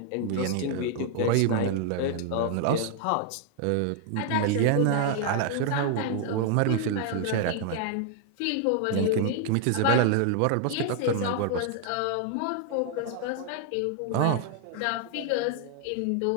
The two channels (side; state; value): both; different; correlation 0.00